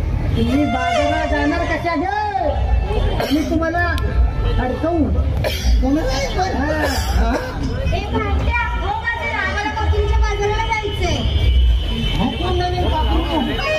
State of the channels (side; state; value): both; identical; correlation 1.00